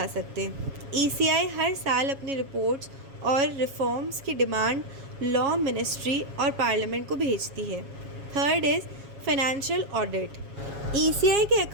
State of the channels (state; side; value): late; left; 7.3 ms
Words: सकते। ECI हर साल अपनी रिपोर्ट्स और रिफॉर्म्स की डिमांड लॉ मिनिस्ट्री और पार्लियामेंट को भेजती है। Third is financial audit. ECI के